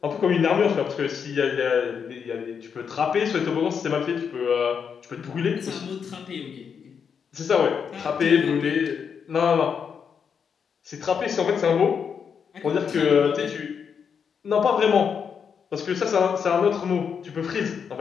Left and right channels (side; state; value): right; quieter; 6.8 dB